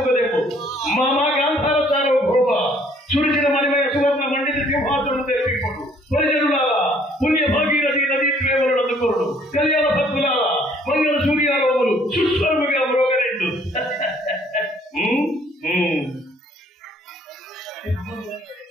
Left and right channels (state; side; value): normal; both; correlation 0.61